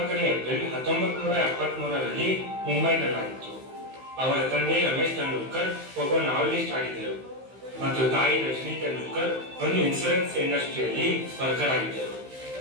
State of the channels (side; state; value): left; late; 15 ms